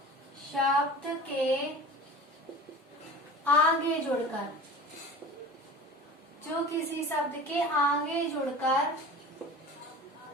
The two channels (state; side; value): normal; both; correlation 0.37